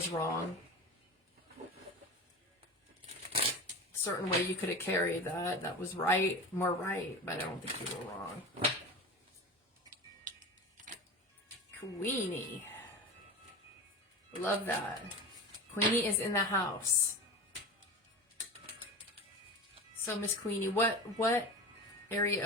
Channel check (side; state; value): both; normal; correlation 0.29